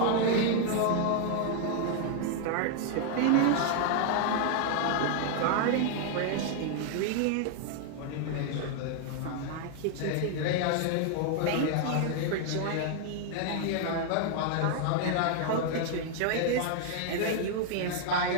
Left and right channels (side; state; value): both; different; correlation 0.00